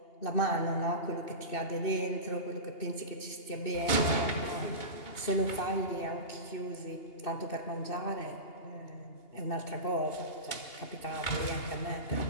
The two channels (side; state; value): right; late; 2.8 ms